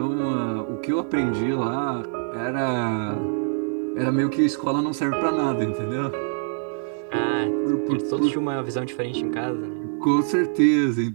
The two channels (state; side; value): silent; left; digital silence